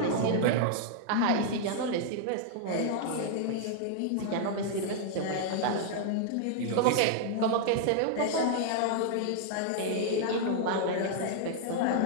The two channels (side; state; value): both; different; correlation 0.00